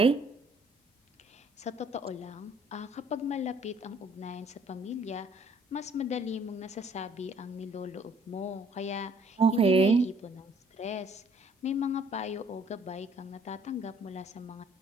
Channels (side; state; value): both; normal; correlation 0.62